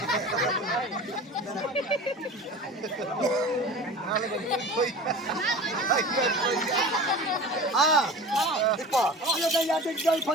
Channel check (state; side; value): normal; both; correlation 0.36